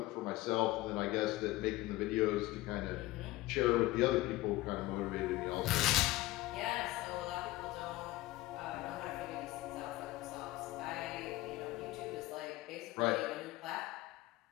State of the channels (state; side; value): quieter; right; 17.9 dB